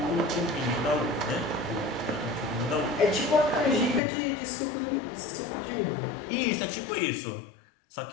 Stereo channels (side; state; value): right; drops out; at 4.0 s